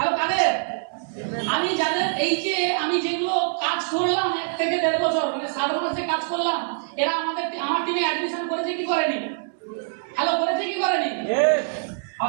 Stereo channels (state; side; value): silent; left; 62 dB below the other